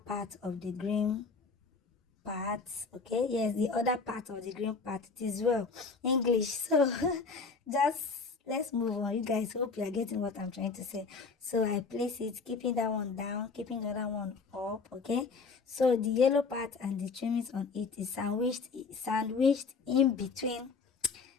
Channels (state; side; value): quieter; right; 4.6 dB